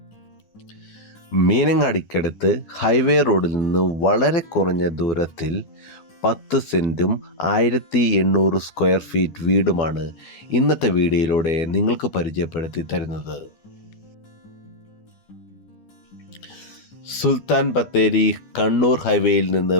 മീനങ്ങാടിക്കടുത്ത് ഹൈവേ റോഡിൽ നിന്ന് വളരെ കുറഞ്ഞ ദൂരത്തിൽ 10 സെൻറ്റും 1800 സ്ക്വയർ ഫീറ്റ് വീടുമാണ് ഇന്നത്തെ വീഡിയോയിലൂടെ നിങ്ങൾക്ക് പരിചയപ്പെടുത്തി തരുന്നത്. സുൽത്താൻ ബത്തേരി കണ്ണൂർ ഹൈവേയിൽ നിന്ന്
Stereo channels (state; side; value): late; right; 12 ms